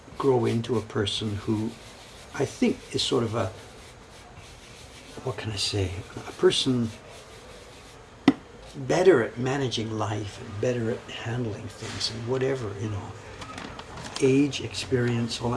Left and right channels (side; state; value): both; identical; correlation 1.00